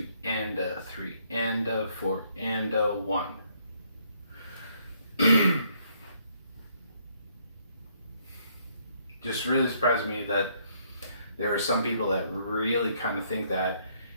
and a, 3 and a, 4 and a 1. Just really surprised me that there are some people that really kind of think that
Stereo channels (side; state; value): both; inverted; correlation -0.69